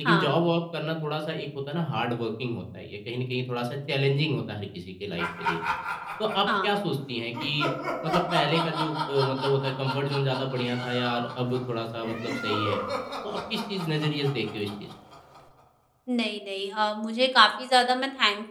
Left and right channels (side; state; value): both; identical; correlation 1.00